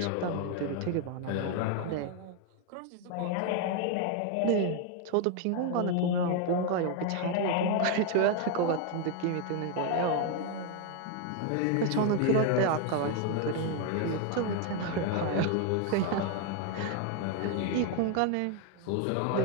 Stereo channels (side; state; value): both; different; correlation 0.01